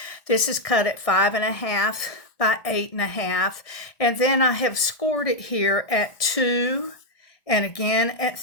This is cut at 5.5 by 8.5, and then I have scored it here at 2 and again at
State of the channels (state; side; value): late; right; 1.6 ms